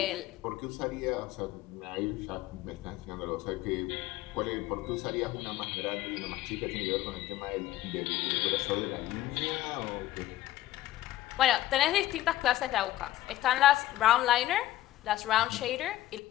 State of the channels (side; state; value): right; quieter; 14.9 dB